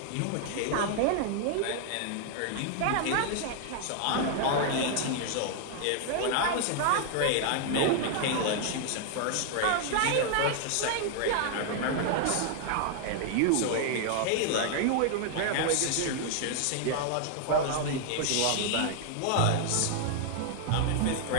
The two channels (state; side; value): different; both; correlation 0.00